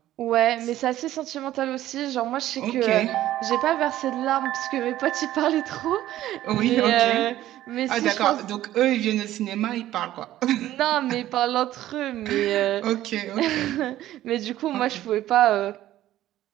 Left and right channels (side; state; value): left; quieter; 13.9 dB